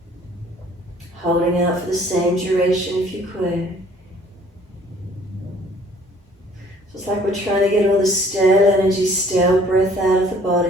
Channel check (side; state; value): both; normal; correlation 0.56